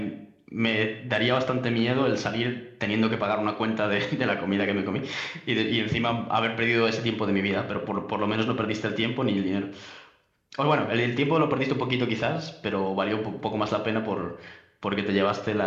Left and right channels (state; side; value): identical; both; correlation 1.00